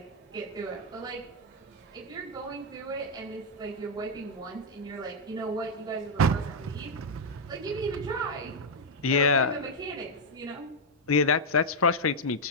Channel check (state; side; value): normal; both; correlation -0.02